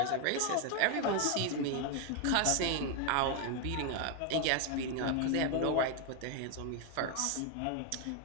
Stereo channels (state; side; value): different; both; correlation 0.01